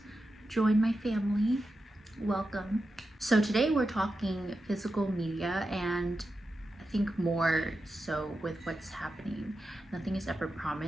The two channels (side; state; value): both; normal; correlation 0.90